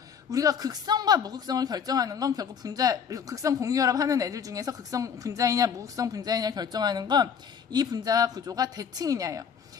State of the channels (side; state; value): right; quieter; 7.2 dB